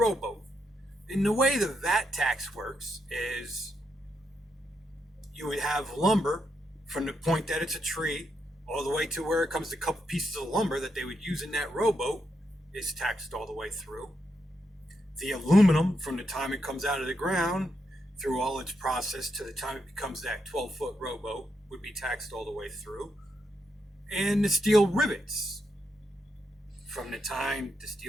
And the way the VAT tax works is you would have lumber from the point that it's a tree all the way to where it comes to a couple pieces of lumber that they would use in that rowboat is taxed all the way through. The aluminum from the time it comes out of the ground through all its process to the time it becomes that 12-foot rowboat would be taxed all the way through. And the steel rivets from the time the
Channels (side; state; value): both; normal; correlation 0.81